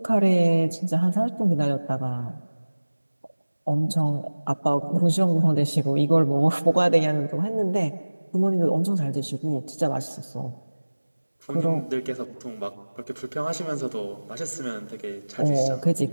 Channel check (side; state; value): both; inverted; correlation -1.00